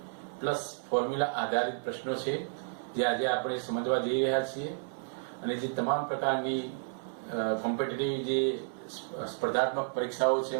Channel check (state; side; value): silent; left; 57 dB below the other